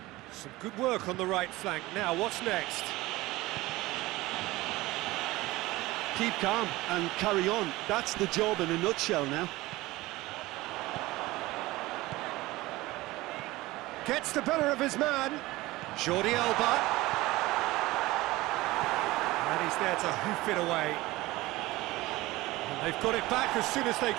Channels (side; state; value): left; quieter; 19.3 dB